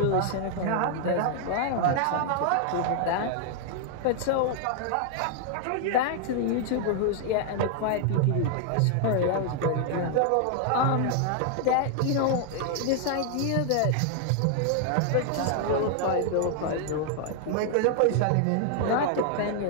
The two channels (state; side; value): different; both; correlation 0.00